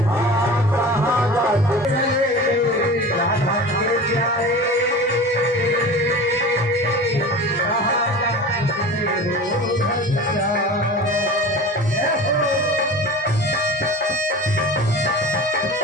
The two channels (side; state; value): both; normal; correlation 0.35